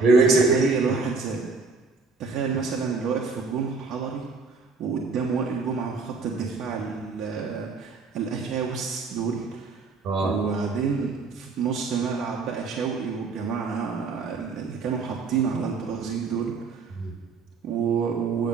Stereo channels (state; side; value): quieter; left; 4.4 dB